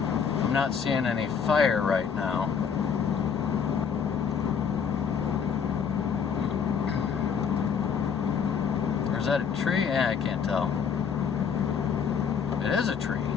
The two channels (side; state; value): right; quieter; 6.7 dB